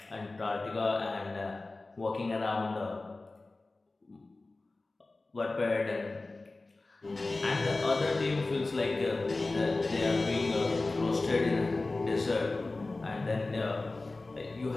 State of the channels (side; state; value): right; quieter; 3.3 dB